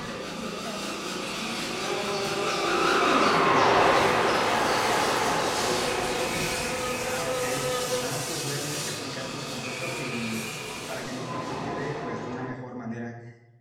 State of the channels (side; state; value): both; identical; correlation 1.00